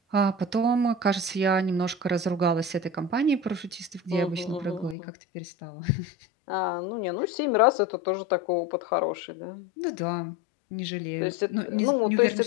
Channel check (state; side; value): drops out; right; at 5.0 s